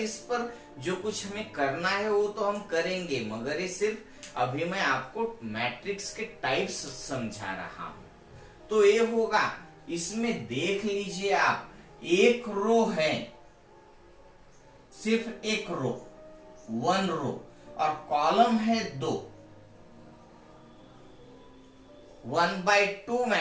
पर जो कुछ हमें करना है वो तो हम करेंगे, मगर ये सिर्फ अभी मैं आपको मैट्रिक्स के टाइप्स समझा रहा हूं। तो ये होगा, इसमें देख लीजिए आप, एक रो है, सिर्फ एक रो, 1 रो, और कॉलम है 2, 1/2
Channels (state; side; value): identical; both; correlation 1.00